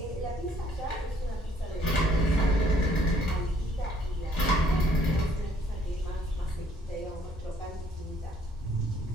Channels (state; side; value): normal; both; correlation 0.63